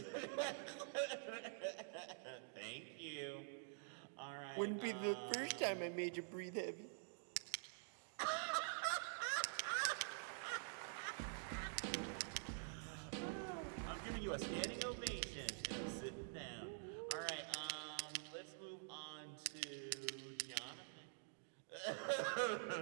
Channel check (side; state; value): left; silent; digital silence